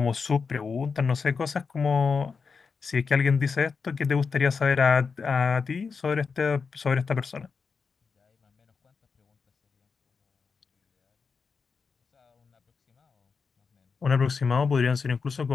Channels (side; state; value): right; quieter; 5.2 dB